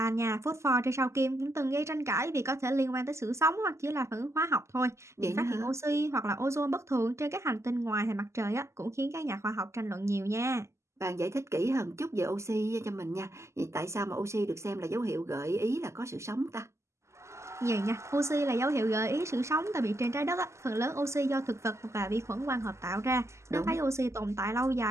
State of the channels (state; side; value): late; left; 0.13 ms